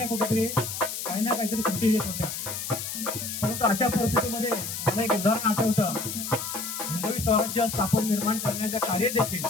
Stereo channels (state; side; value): noise; left; hiss, 5 dB below the sound